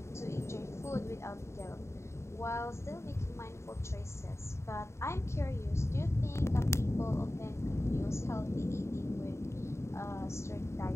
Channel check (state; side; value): late; right; 0.13 ms